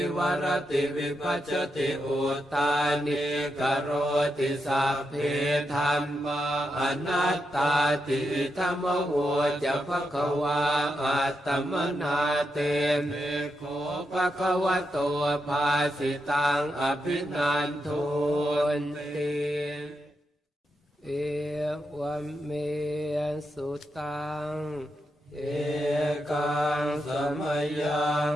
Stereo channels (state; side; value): normal; both; correlation 0.85